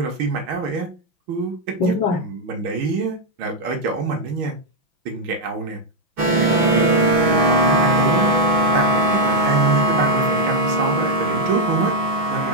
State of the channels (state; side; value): late; left; 6.1 ms